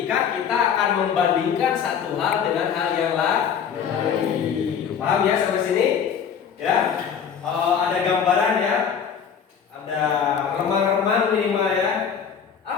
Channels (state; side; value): quieter; right; 7.4 dB